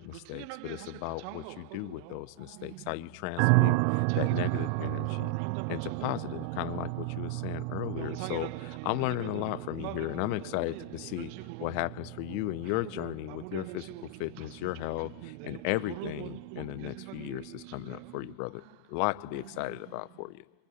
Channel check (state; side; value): different; both; correlation 0.00